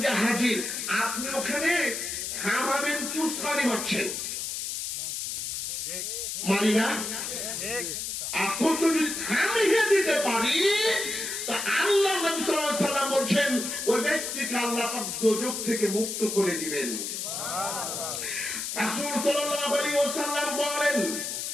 যে হাজির, আপনি ওখানে থামাবেন কি উস্কানি মারছেন? মানি না? এখন যদি থামিয়ে দিতে পারি, তা আল্লাহ নবী সাল্লাল্লাহু আলাইহি ওয়াসাল্লাম বলছেন, ওই ব্যক্তিকে আল্লাহ পাক দোজখ থেকে মুক্ত করে দিবেন। রাসূল সাল্লাল্লাহু আলাইহি ওয়াসাল্লাম বলেন,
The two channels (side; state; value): left; noise; hiss, 4 dB below the sound